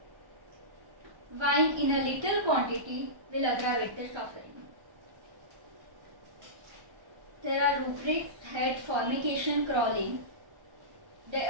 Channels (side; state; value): left; late; 1.3 ms